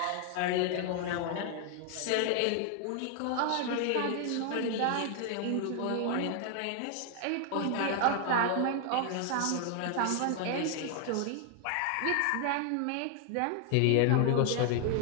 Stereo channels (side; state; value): both; different; correlation 0.00